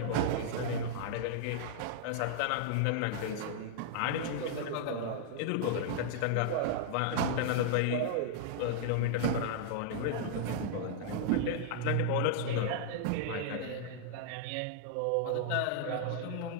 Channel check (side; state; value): both; different; correlation -0.01